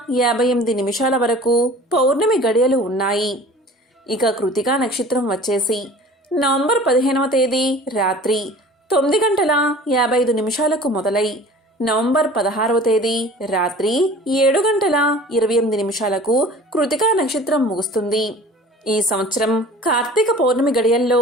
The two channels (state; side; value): normal; both; correlation 0.44